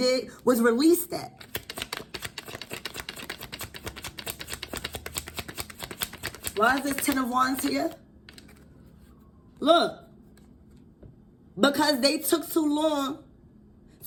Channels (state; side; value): identical; both; correlation 1.00